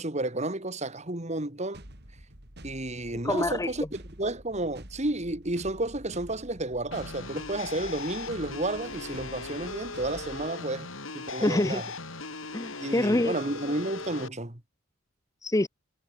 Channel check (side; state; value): both; normal; correlation 0.46